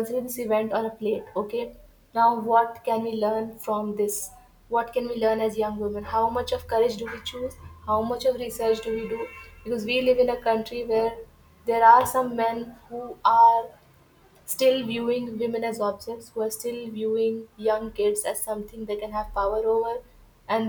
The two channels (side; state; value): both; identical; correlation 1.00